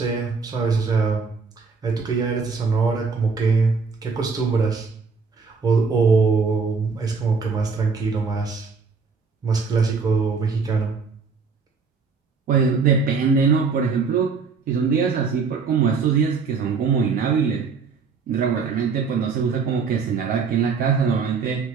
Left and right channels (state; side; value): quieter; left; 5.0 dB